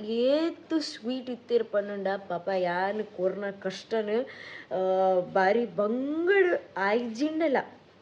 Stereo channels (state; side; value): identical; both; correlation 1.00